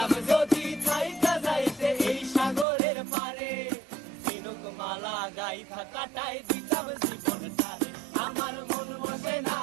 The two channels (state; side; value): drops out; left; at 2.7 s